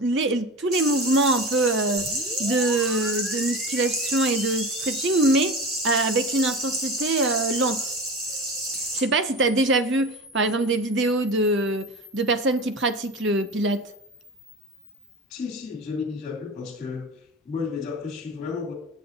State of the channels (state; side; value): normal; both; correlation 0.30